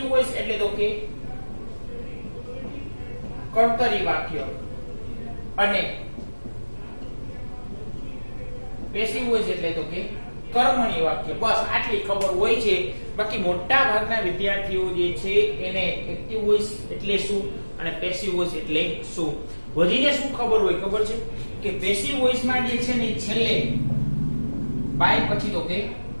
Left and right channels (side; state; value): both; inverted; correlation -1.00